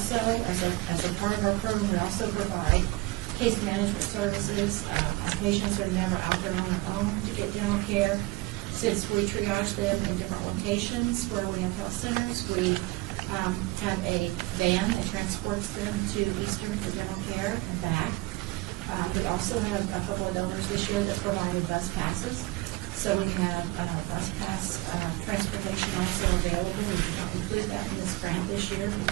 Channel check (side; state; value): left; quieter; 20.8 dB